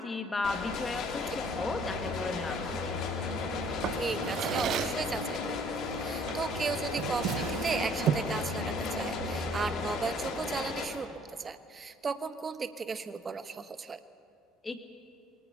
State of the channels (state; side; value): normal; both; correlation 0.58